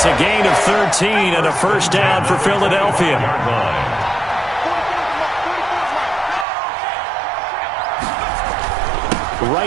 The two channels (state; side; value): drops out; left; at 6.5 s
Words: a gain of 13 and a first down for Philadelphia.